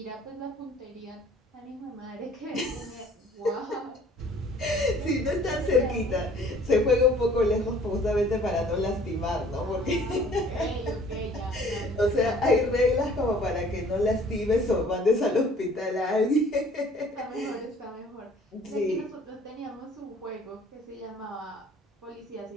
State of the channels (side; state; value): both; normal; correlation 0.54